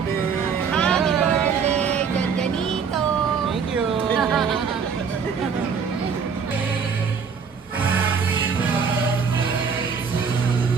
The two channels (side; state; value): left; quieter; 6.1 dB